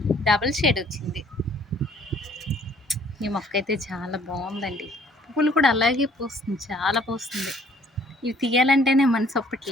డబుల్ షేడ్ వచ్చింది. ఈ మొక్క అయితే చాలా బాగుందండి. పువ్వులు కూడా అలాగే పూస్తుంది, చాలా పూస్తుంది. ఇవి తీయాలంటేనే మనసు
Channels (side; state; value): both; normal; correlation 0.59